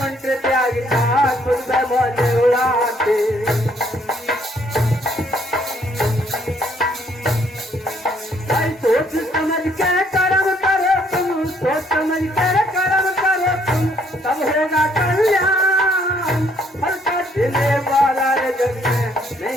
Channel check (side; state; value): both; normal; correlation 0.66